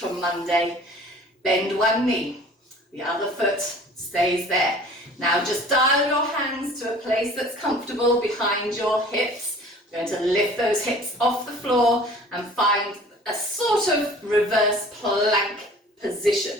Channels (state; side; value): normal; both; correlation 0.47